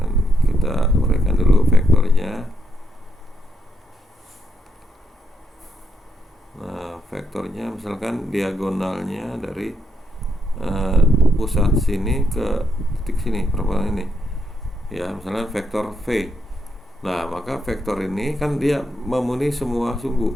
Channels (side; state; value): both; normal; correlation 0.78